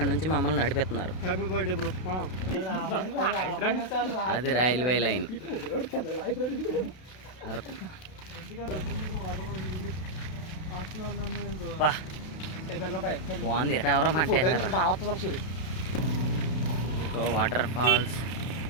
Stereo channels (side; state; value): right; late; 32 ms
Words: నుంచి మమ్మల్ని నడిపిస్తున్నారు. అది రైల్వే లైన్ అరకు. బాగుంది. ఎవరో అంటే వాటర్ ఫాల్స్